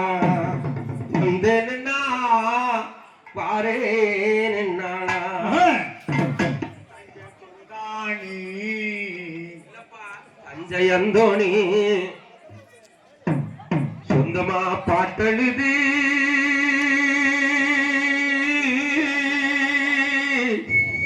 வந்து நின்னா பாரே நின்னானா தஞ்சை அந்தோணி சொந்தமா பாட்டெழுதி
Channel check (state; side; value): identical; both; correlation 1.00